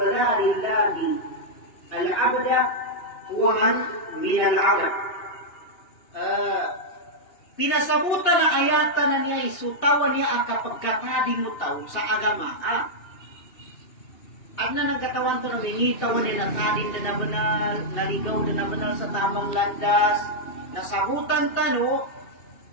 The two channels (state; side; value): late; right; 2.8 ms